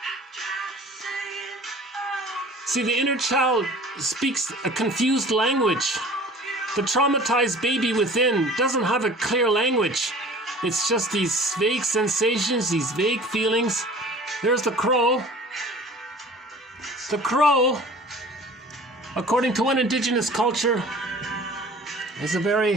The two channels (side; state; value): both; normal; correlation 0.45